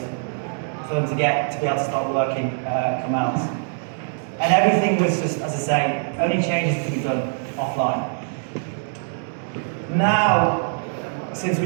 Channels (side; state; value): left; silent; 63 dB below the other